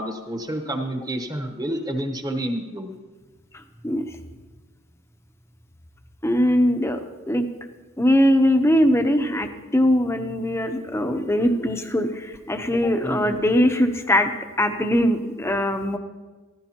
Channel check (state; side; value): normal; both; correlation 0.79